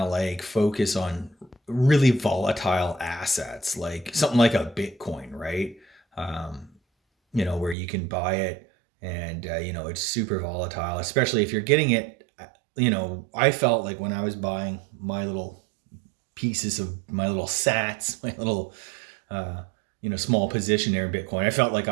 focus on really volatile assets, like something like a Bitcoin, right? Where you can buy it and, it's super volatile, especially if you're getting it. I felt like when I was buying my little pieces of my little sats, my little, small position there in Bitcoin, I felt like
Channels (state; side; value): drops out; left; at 7.8 s